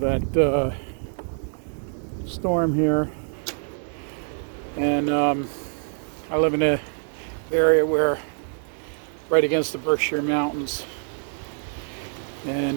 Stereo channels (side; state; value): left; silent; 57 dB below the other